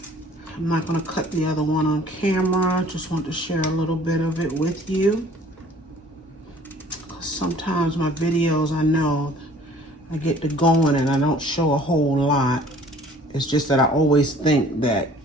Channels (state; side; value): normal; both; correlation 0.53